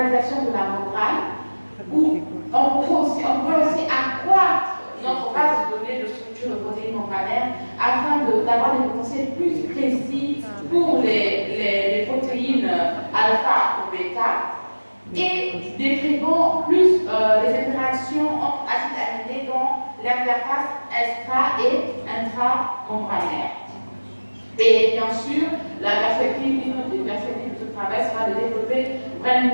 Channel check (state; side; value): inverted; both; correlation -1.00